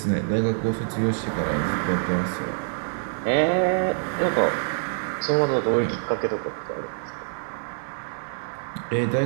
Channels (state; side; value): silent; left; digital silence